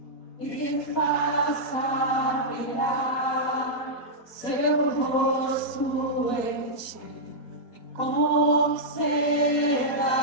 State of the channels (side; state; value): right; late; 4.1 ms